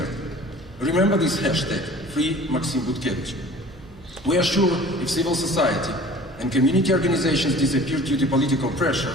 Remember this hashtag, Free Maxim Butkevich. We are sure if civil society and community organizations disappear due to political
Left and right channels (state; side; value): noise; right; hum, 21 dB below the sound